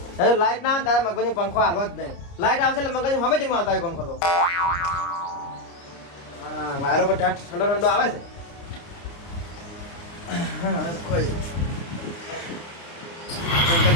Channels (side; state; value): right; late; 29 ms